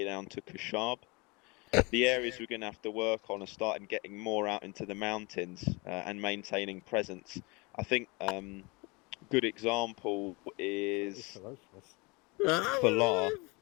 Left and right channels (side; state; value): right; quieter; 27.2 dB